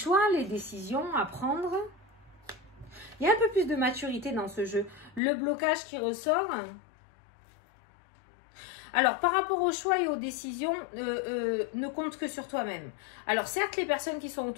les décisions à prendre. Il y a un peu plus de maturité dans ce jeu. Le blocage qui ressort. Alors, par rapport aux choix et aux décisions, ne compte que sur toi-même. Alors, certes, les personnes qui sont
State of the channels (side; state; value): right; drops out; at 5.2 s